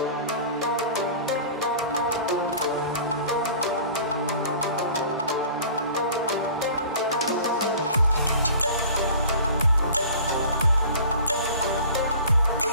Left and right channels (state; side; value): inverted; both; correlation -0.42